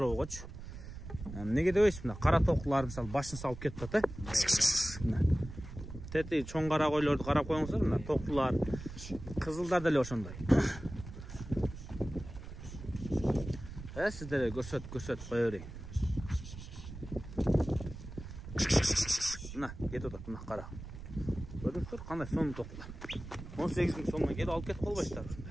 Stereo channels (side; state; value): right; noise; rumble, 12 dB below the sound